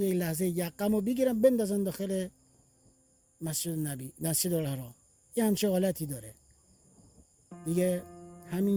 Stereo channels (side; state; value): both; identical; correlation 1.00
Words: یه لحظه یقمو بگیرم بندازن داخل مسجد نبی، مسجد الحرام، یه همچه حالتی داره دیگه. همین